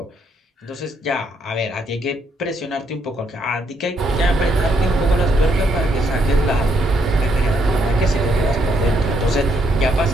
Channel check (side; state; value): both; normal; correlation 0.74